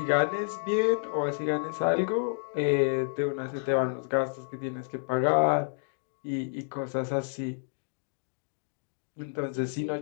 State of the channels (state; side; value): silent; right; digital silence